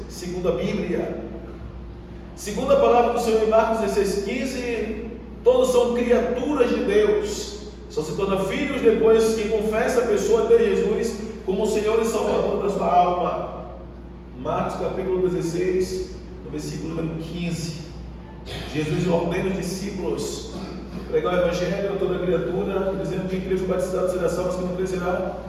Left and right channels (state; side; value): identical; both; correlation 1.00